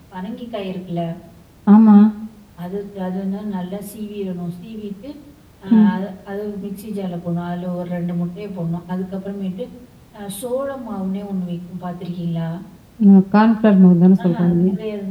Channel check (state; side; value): identical; both; correlation 1.00